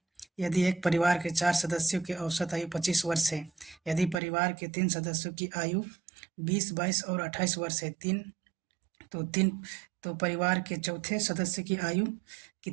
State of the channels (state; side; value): drops out; left; at 4.2 s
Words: यदि एक परिवार के 4 सदस्यों की औसत आयु 25 वर्ष है, यदि परिवार के 3 सदस्यों की आयु 20, 22 और 28 वर्ष है, तो परिवार के चौथे सदस्य की आयु